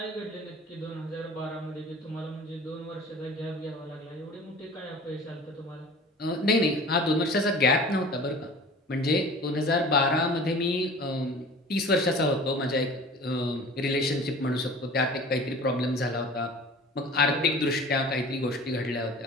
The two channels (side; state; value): both; normal; correlation 0.42